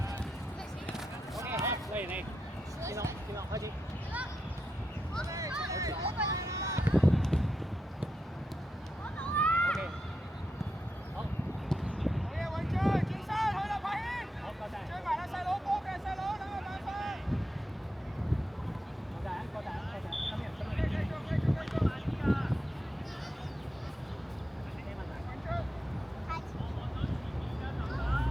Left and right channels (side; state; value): both; normal; correlation 0.86